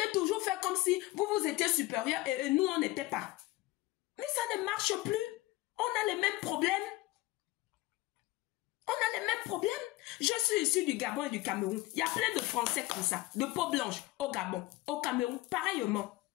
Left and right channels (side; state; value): right; quieter; 19.4 dB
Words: toujours faire comme si vous étiez supérieur et nous, on n'était pas. Mais ça ne marche plus. On a les mêmes problèmes. On a les mêmes problèmes. Je suis issu du Gabon et du Cameroun. Il y a plein de Français comme ça, de peau blanche, au Gabon, au Cameroun, pareillement.